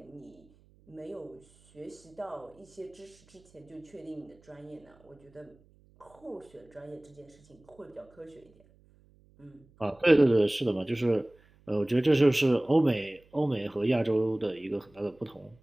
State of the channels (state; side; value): noise; right; hum, 30 dB below the sound